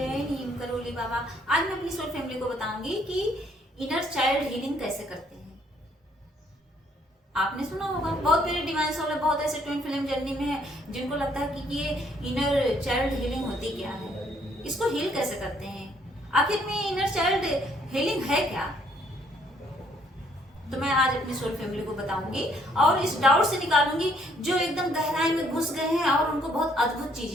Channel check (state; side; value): normal; both; correlation 0.66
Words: नीम करोली बाबा। आज मैं अपनी सोल फैमिली को बताऊंगी कि इनर चाइल्ड हीलिंग कैसे करते हैं। आपने सुना होगा, बहुत मेरे डिवाइन सोल है, बहुत ऐसे ट्विन फिल्म जर्नी में है जिनको लगता है कि ये इनर चाइल्ड हीलिंग होती क्या है, इसको हील कैसे करते हैं, आखिर में इनर चाइल्ड हीलिंग है क्या। तो मैं आज अपनी सोल फैमिली को बताऊंगी और इस डाउट से निकालूंगी जो एकदम गहराई में घुस गए हैं और उनको बहुत अद्भुत